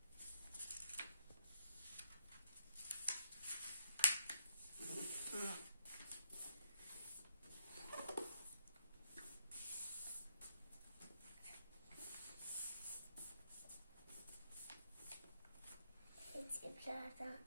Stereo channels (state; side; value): inverted; both; correlation -0.75